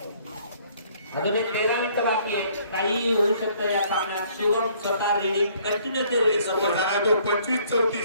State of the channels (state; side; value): inverted; both; correlation -0.61